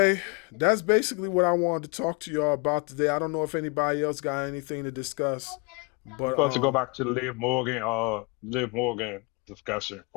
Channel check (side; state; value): right; quieter; 31.6 dB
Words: that's basically what I wanted to talk to y'all about today. I don't know if anybody else got anything to discuss, We but supposed to go back to the Liv Morgan discussion